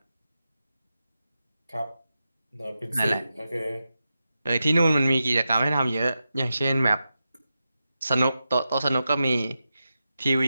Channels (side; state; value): both; inverted; correlation -0.90